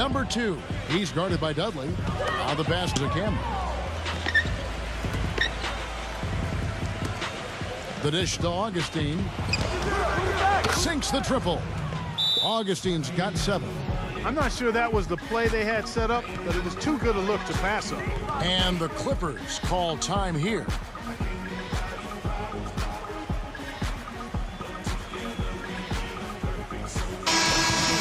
2. He's guarded by Dudley. Now the pass to Cameron. The dish to Augustine. Sinks the triple. Augustine's got 7. I'm not sure that was the play they had set up, but it was too good a look to pass up. And the Clippers call time here.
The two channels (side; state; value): both; identical; correlation 1.00